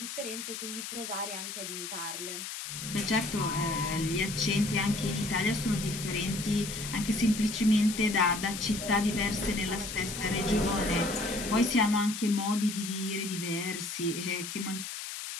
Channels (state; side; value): noise; left; hiss, 7 dB below the sound